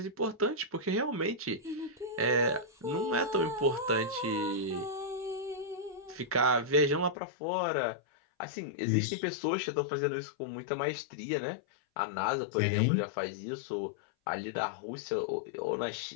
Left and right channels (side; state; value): right; drops out; at 7.2 s